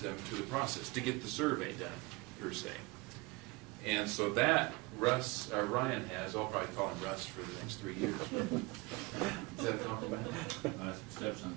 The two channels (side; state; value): left; quieter; 24.5 dB